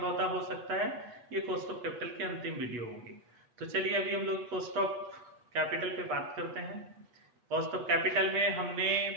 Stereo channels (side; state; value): left; late; 8.3 ms